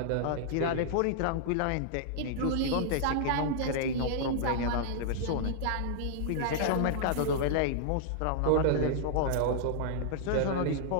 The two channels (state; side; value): different; both; correlation -0.01